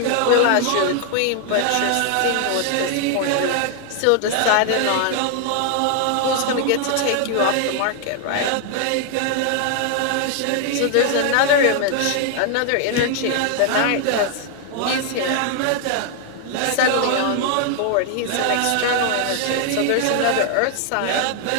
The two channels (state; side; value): different; both; correlation 0.00